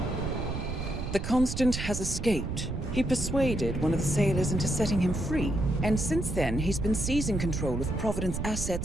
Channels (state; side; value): noise; right; rumble, 5 dB below the sound